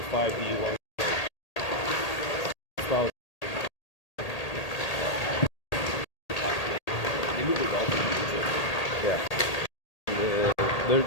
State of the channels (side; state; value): right; late; 1.8 ms